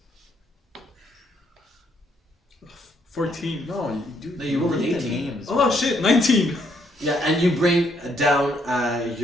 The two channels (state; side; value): normal; both; correlation 0.71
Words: 14. No, you do. No, you rolled an read the 18. names. Oh shit, 19. Yeah, and you bring down